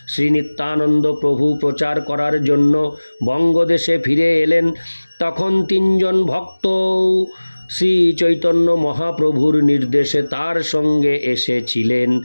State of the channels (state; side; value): inverted; both; correlation -1.00